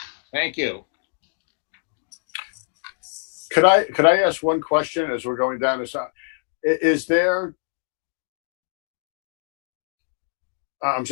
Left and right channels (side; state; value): right; silent; digital silence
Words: Thank you. Could I ask one question as we're going down this? Is there? I'm